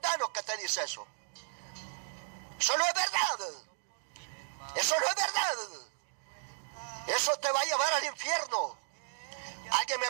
que te dice eso. Eso no es verdad. Eso no es verdad. Eso te va a llevar al infierno. Alguien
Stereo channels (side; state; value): left; silent; digital silence